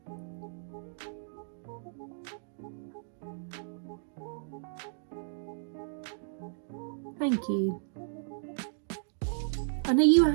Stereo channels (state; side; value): silent; left; digital silence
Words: Thank you. And are you a